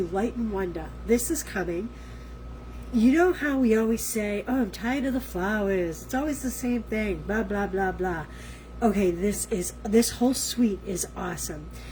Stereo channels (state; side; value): identical; both; correlation 1.00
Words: Light and Wonder. This is coming. You know how we always say, oh, I'm tired of the flowers. It's always the same thing, blah, blah, blah, blah. Okay, this whole suite is awesome.